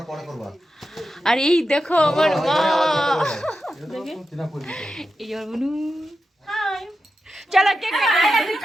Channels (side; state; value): both; normal; correlation 0.90